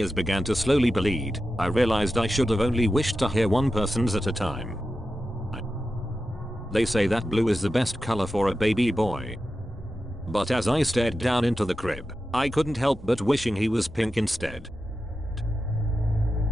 began to slowly bleed, I realized I should have only wished to hear one person's at a time. They say that blue is the best color for a baby boy. But as I stared down into the crib, I couldn't help but wishing he was pink instead.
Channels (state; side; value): normal; both; correlation 0.91